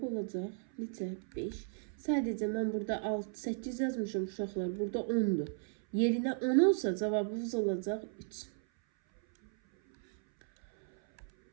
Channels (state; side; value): silent; left; 54 dB below the other